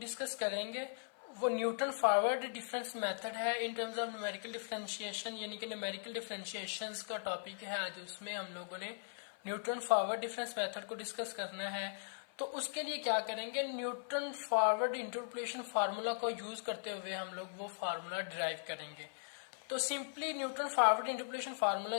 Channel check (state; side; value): silent; right; 52 dB below the other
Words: करेंगे वो न्यूटन फॉरवर्ड डिफरेंस मेथड है in terms of numerical differentiation, यानी कि न्यूमेरिकल डिफरेंशिएशंस का टॉपिक है आज। उसमें हम लोगों ने न्यूटन फॉरवर्ड डिफरेंस मेथड को डिस्कस करना है। तो उसके लिए क्या करेंगे, न्यूटन फॉरवर्ड इंटरपोलेशन फार्मूला को यूज करते हुए हम लोग वो फार्मूला डिराइव करेंगे। तो simply Newton forward interpolation formula